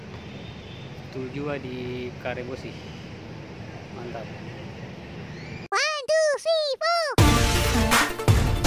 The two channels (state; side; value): identical; both; correlation 1.00